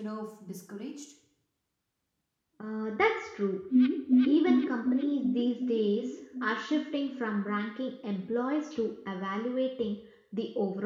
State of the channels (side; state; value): both; identical; correlation 1.00